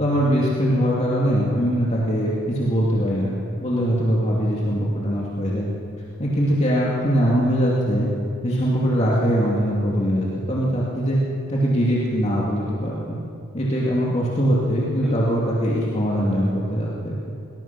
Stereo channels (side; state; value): both; normal; correlation 0.76